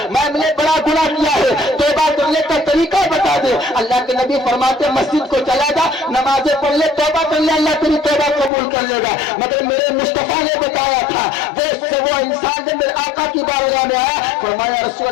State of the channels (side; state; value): right; drops out; at 8.5 s